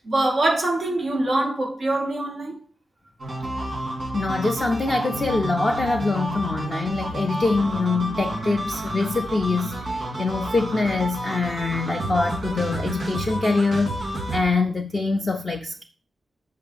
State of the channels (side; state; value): both; normal; correlation 0.88